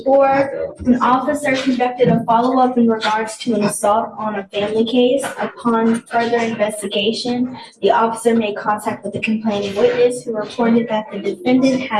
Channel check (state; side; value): identical; both; correlation 1.00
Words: an officer conducted a follow-up in regards to an assault on a family case. Upon further investigation, the officer made contact with the complaining witness who reported that the defendant